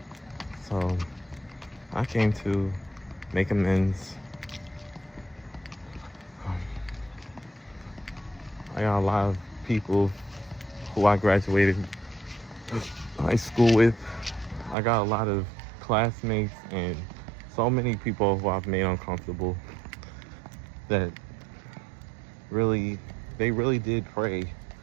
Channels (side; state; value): left; drops out; at 14.8 s